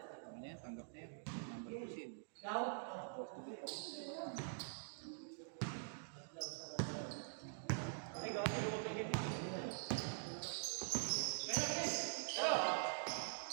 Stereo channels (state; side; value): silent; left; digital silence